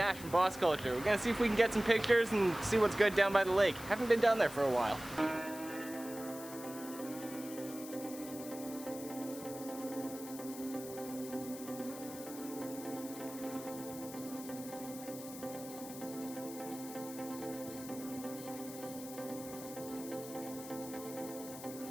from Boss Culture. We're gonna see if we can get some pictures and see what's good down by the lake. Haven't been down there for a while.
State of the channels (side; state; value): left; noise; hiss, 13 dB below the sound